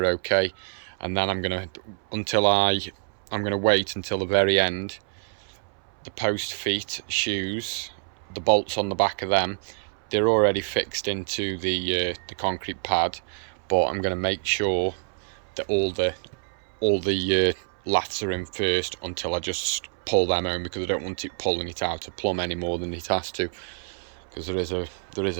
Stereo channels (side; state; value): left; silent; 61 dB below the other